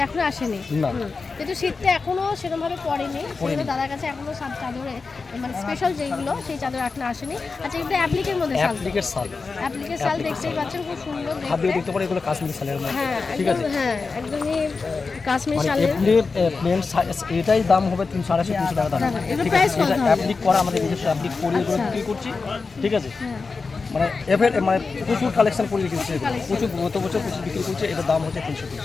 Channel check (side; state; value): right; quieter; 4.4 dB